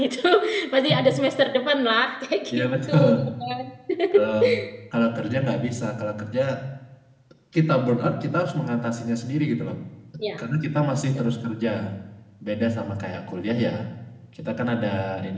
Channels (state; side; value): identical; both; correlation 1.00